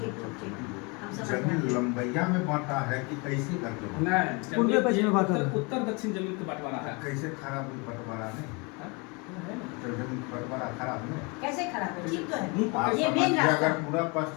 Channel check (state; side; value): quieter; right; 29.9 dB